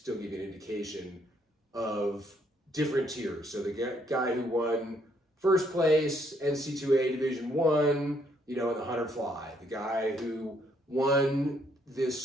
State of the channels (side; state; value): both; normal; correlation 0.70